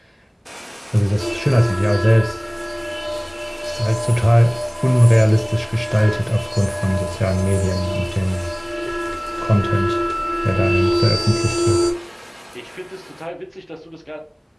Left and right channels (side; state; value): both; identical; correlation 1.00